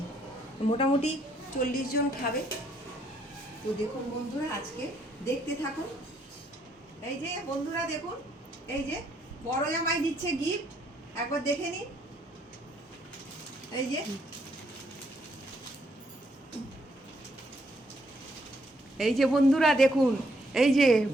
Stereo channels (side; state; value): both; normal; correlation 0.71